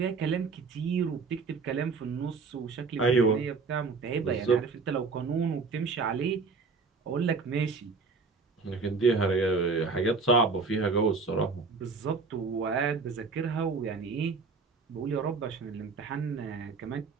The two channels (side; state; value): left; quieter; 4.5 dB